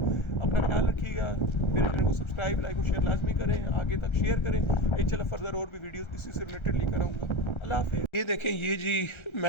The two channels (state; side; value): late; right; 1.3 ms